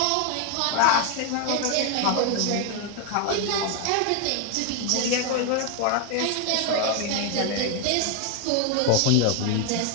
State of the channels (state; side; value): different; both; correlation 0.01